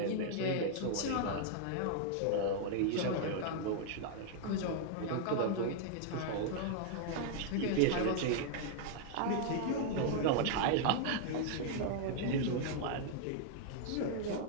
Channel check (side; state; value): both; different; correlation -0.01